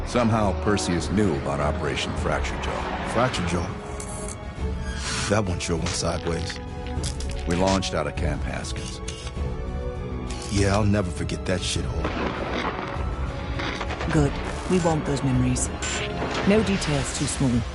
Somehow, Perseus knew about Operation Fracture Jaw. Fracture Jaw? That one sure went sideways. We launched out of Camp Haskins. Yeah, I'll never forget that shithole. Good. We want those memories. No details too small.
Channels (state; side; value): identical; both; correlation 1.00